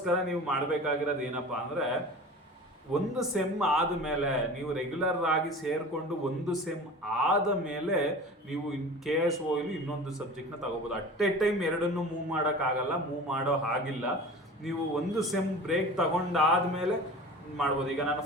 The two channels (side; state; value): both; normal; correlation 0.37